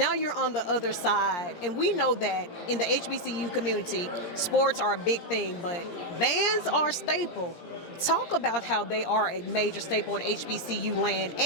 you're on the other side. And we know that in the HBCU community, sports are a big thing, but bands are a staple. Talk about how they are a major staple in HBCU land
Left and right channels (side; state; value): right; late; 17 ms